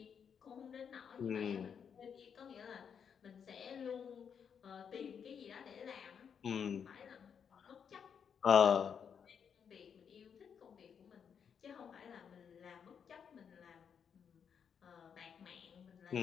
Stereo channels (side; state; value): right; quieter; 7.3 dB